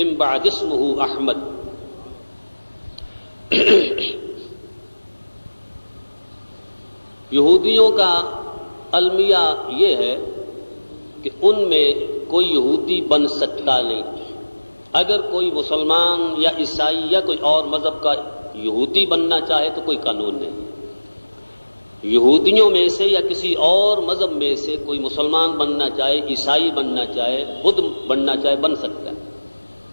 بعد اسمہ احمد. یہودیوں کا المیہ یہ ہے کہ ان میں کوئی یہودی بن سکتا نہیں. اگر کوئی مسلمان یا عیسائی یا کوئی اور مذہب کا یہودی بننا چاہے تو کوئی قانون نہیں. یہودیوں میں سے یا کسی اور مذہب میں سے کوئی مسلمان بننا چاہے، عیسائی بننا چاہے، بدھ بننا چاہے، بن سکتا ہے.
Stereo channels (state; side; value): inverted; both; correlation -1.00